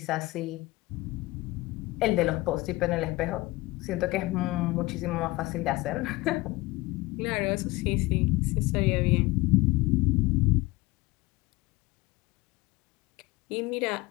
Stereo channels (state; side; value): quieter; right; 21.0 dB